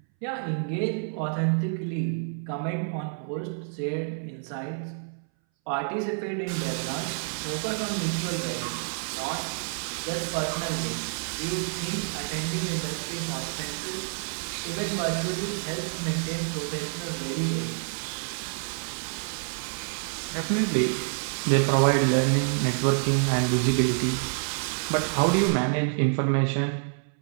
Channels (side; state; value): left; silent; 59 dB below the other